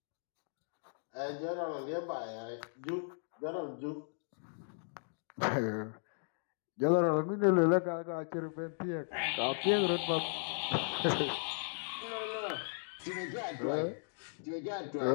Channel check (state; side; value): silent; right; digital silence